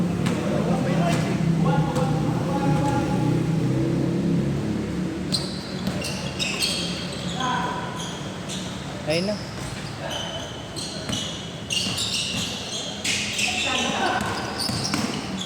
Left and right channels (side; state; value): both; identical; correlation 1.00